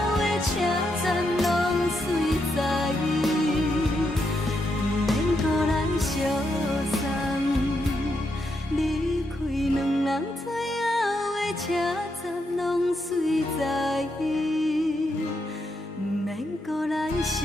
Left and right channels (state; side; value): normal; both; correlation 0.81